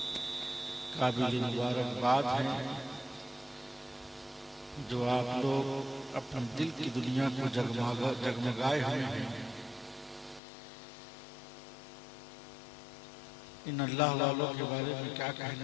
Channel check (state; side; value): drops out; right; at 10.4 s